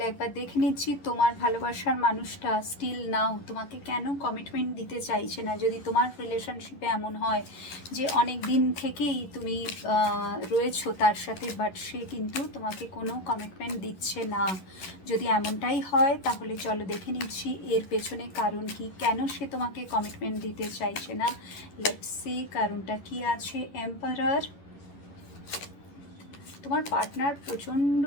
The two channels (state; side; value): late; right; 11 ms